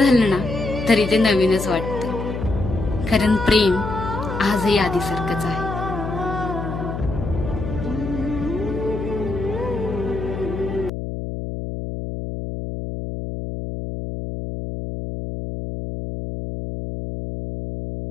ना तरी ते नवीनच वाटतं, कारण प्रेम आजही आधीसारखंच आहे।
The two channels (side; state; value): left; noise; hum, 5 dB below the sound